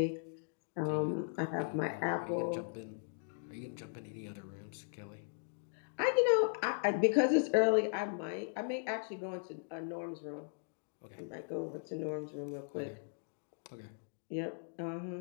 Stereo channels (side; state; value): right; silent; digital silence